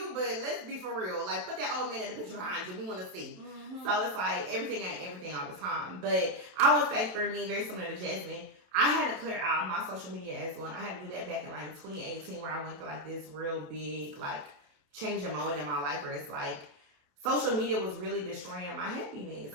but let's be for real. Like, put that old man in the picture behind you. We want to see. Mm-hmm. So it's like everything ain't everything all the time. But I would say for me, very similar to Jasmine, I had to clear out my social media as well. I had to do that back in like 2018, where I went through like this real big like changing moment in my life, where it's like social media was really destroying my happiness.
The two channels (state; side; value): late; left; 27 ms